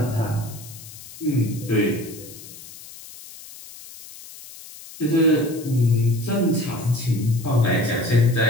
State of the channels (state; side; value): noise; left; hiss, 17 dB below the sound